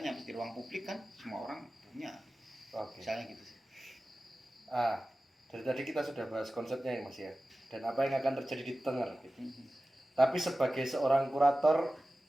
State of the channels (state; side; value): normal; both; correlation 0.95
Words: mesti ruang publik kan semua orang punya. Oke. Misalnya gitu sih. Dari tadi kita sudah bahas konsepnya ya Mas ya. Dan apa yang akan terjadi di Tenger gitu. Tapi sebagai seorang kurator